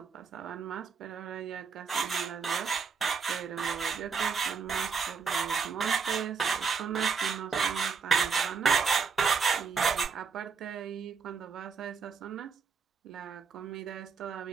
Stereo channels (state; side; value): quieter; left; 5.7 dB